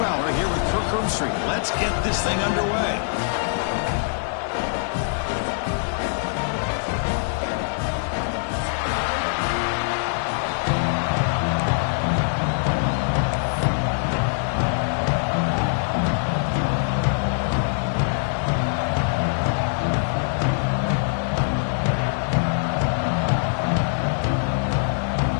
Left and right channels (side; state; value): right; silent; digital silence